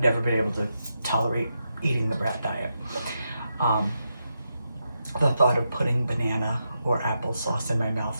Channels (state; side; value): inverted; both; correlation -0.85